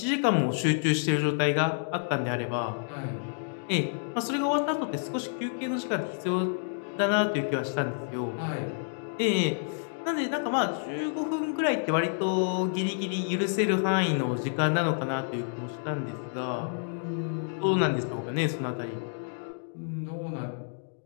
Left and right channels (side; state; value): right; silent; digital silence